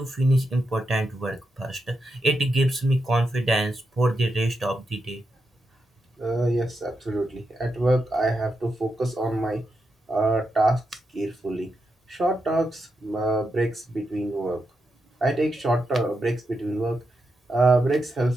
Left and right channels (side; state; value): both; normal; correlation 0.85